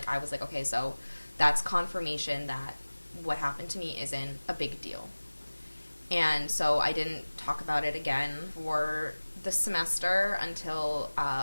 I was like, okay, so that's confirmation that what happened to me isn't a big deal. And so I didn't talk about it again for the semester until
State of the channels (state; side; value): inverted; both; correlation -1.00